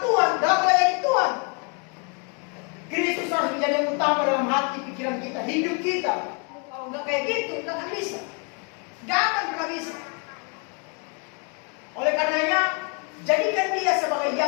dalam melayani Tuhan, Kristus harus menjadi yang utama dalam hati, pikiran kita, hidup kita. Kalau nggak kayak gitu, nggak akan bisa. Nggak akan pernah bisa. Oleh karenanya, jadikan Dia sebagai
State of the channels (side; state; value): right; quieter; 35.6 dB